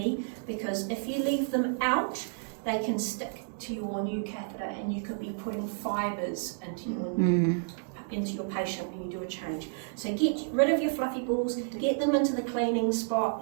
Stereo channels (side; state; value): left; silent; 57 dB below the other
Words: because if you leave them out, they can stick to your new catheter and you could be putting fibres into your patient when you do a change. So get rid of your fluffy balls, get them into the cleaning